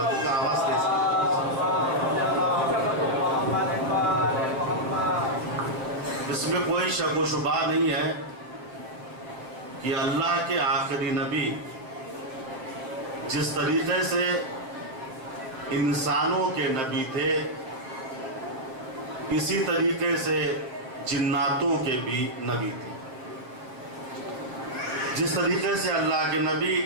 کا آواز دے سکتے۔ اس میں کوئی شک و شبہ نہیں ہے کہ اللہ کے آخری نبی جس طریقے سے انسانوں کے نبی تھے، اسی طریقے سے جناتوں کے بھی نبی تھے۔ جس طریقے سے اللہ کے نبی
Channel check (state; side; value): late; left; 7.7 ms